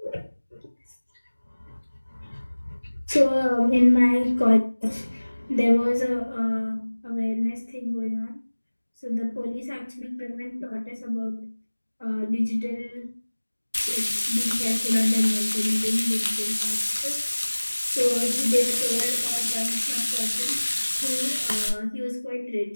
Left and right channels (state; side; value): inverted; both; correlation -1.00